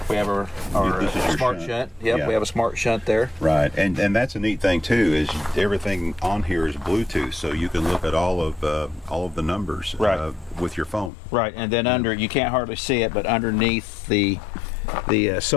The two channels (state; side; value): drops out; right; at 11.1 s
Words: We have our This is your smart shunt. shunt. Yep, Yeah. we have a smart shunt there. Right, and that's a neat thing too. Is everything on here is Bluetooth, so you can look at all of the numbers Right. with your phone. Right, and then under, you can't hardly see it, but underneath the